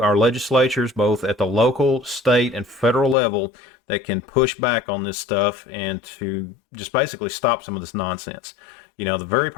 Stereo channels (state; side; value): drops out; right; at 3.2 s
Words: our legislatures, both at the local, state, and federal level, that can push back on this stuff and to just basically stop some of this nonsense. The very